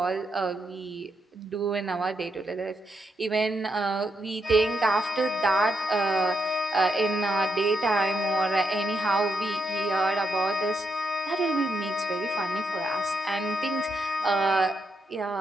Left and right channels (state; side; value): normal; both; correlation 0.81